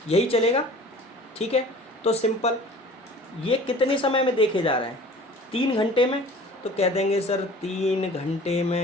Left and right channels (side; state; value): both; normal; correlation 0.45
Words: यही चलेगा। ठीक है, तो सिंपल ये कितने समय में देखे जा रहे हैं, 3 घंटे में। तो कह देंगे सर 3 घंटे